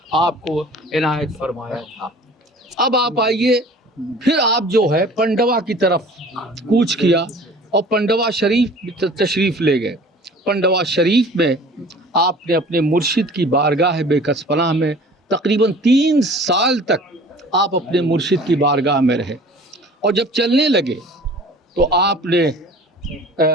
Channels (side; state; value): both; normal; correlation 0.46